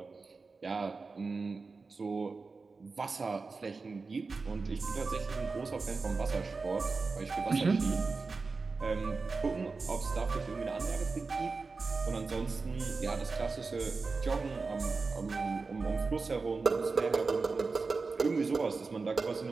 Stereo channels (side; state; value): left; quieter; 4.2 dB